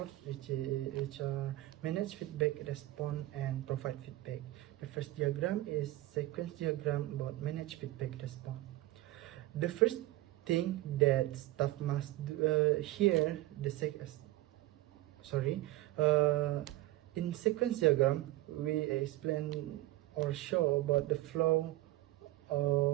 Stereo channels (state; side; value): quieter; left; 16.9 dB